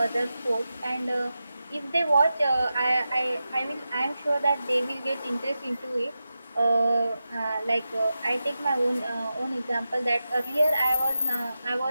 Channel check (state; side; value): inverted; both; correlation -0.92